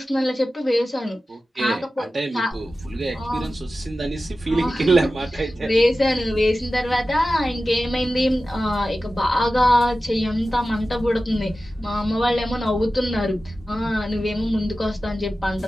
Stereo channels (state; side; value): normal; both; correlation 0.95